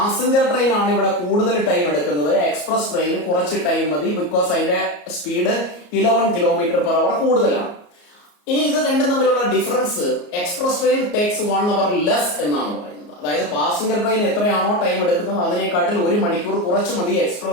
ട്രെയിൻ ആണ് ഇവിടെ കൂടുതൽ ടൈം എടുക്കുന്നത്, എക്സ്പ്രസ് ട്രെയിൻ കുറച്ച് ടൈം മതി, ബിക്കോസ് അതിന്റെ സ്പീഡ് 11 km per hour കൂടുതലാണ്. ഇനി ഇത് രണ്ടും തമ്മിലുള്ള difference, express train takes 1 hour less എന്നാണ് പറയുന്നത്. അതായത് പാസഞ്ചർ ട്രെയിൻ എത്രയാണോ ടൈം എടുക്കുന്നത് അതിനെക്കാട്ടിൽ 1 മണിക്കൂർ കുറച്ച് മതി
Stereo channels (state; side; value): late; right; 34 ms